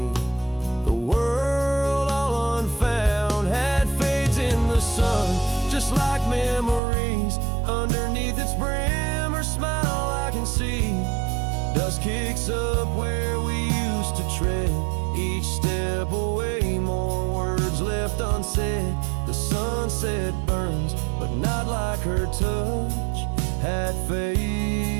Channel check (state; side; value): drops out; left; at 6.8 s